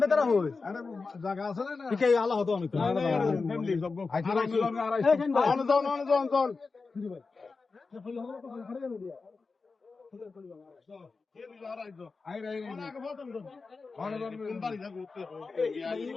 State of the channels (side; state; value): right; quieter; 4.3 dB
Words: জায়গা আছে না আল্লাহ হতো আমি